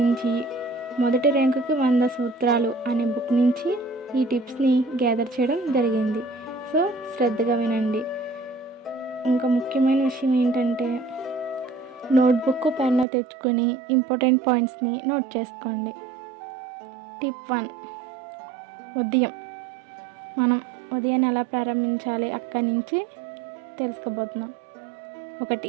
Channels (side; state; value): left; drops out; at 13.1 s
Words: మొదటి ర్యాంకుకి 100 సూత్రాలు అనే బుక్ నుంచి ఈ టిప్స్ని గ్యాదర్ చేయడం జరిగింది. సో శ్రద్ధగా వినండి. ఇంకా ముఖ్యమైన విషయం ఏంటంటే నోట్బుక్ పెన్ను తెచ్చుకొని ఇంపార్టెంట్ పాయింట్స్ని నోట్ చేసుకోండి. టిప్ 1, మనం ఉదయాన్ని ఎలా ప్రారంభించాలి అక్కడి నుంచి తెలుసుకోబోతున్నాం.